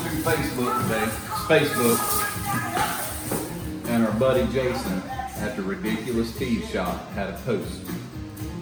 Facebook, and our buddy Jason at the Ridiculous Speedshop had a post.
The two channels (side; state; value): both; identical; correlation 1.00